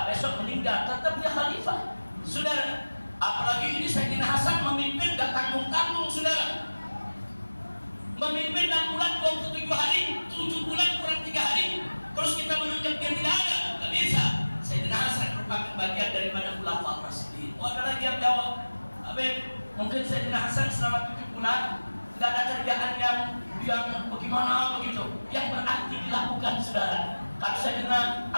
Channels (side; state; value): both; inverted; correlation -1.00